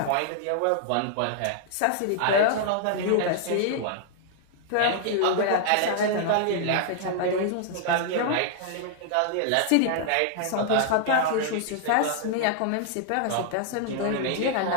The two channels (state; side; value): different; both; correlation 0.00